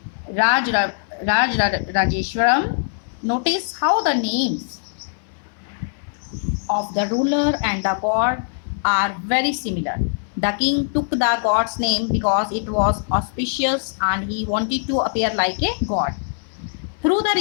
Rajeshwaram. Notice how the names of the ruler and the god are very similar. The king took the god's name because it was auspicious and he wanted to appear like a god. Through the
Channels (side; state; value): right; silent; 60 dB below the other